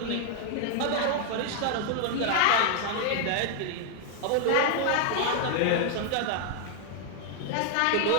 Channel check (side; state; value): both; different; correlation 0.00